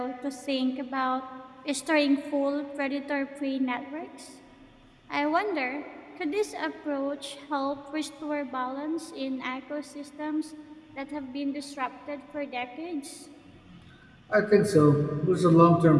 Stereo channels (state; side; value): identical; both; correlation 1.00